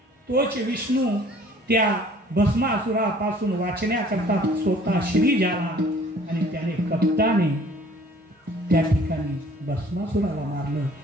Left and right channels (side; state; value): both; normal; correlation 0.54